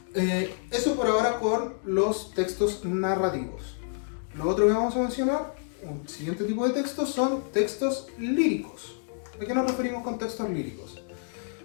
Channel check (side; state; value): right; silent; digital silence